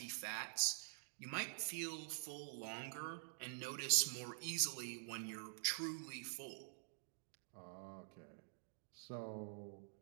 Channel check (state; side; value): silent; left; digital silence